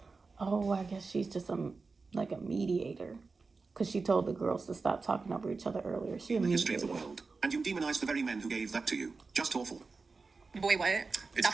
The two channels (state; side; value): quieter; left; 4.2 dB